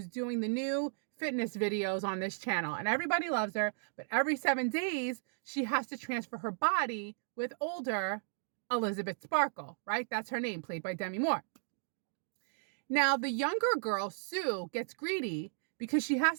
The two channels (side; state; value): left; silent; digital silence